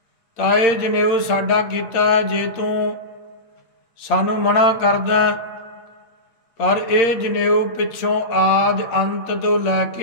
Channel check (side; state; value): right; late; 8.7 ms